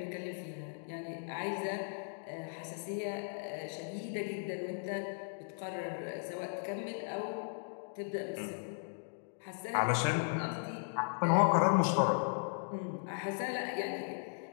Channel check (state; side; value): silent; right; digital silence